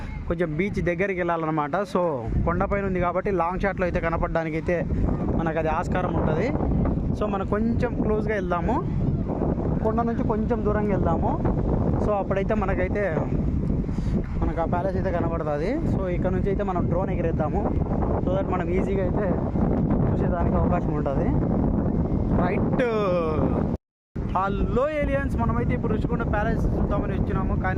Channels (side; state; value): both; identical; correlation 1.00